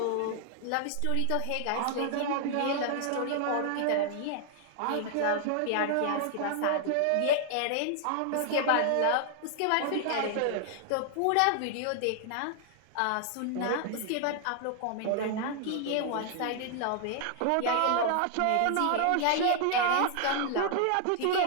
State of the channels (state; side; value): different; both; correlation 0.00